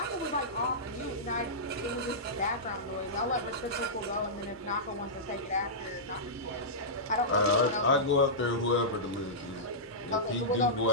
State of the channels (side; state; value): both; normal; correlation -0.14